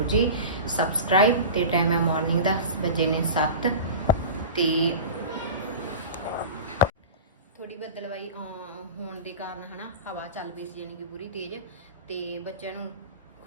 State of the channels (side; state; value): both; inverted; correlation -0.32